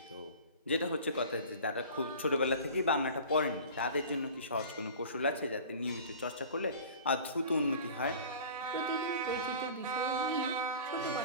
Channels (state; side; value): inverted; both; correlation -0.41